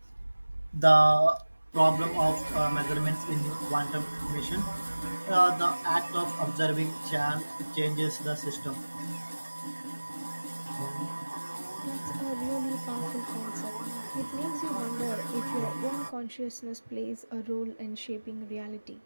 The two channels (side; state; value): both; inverted; correlation -1.00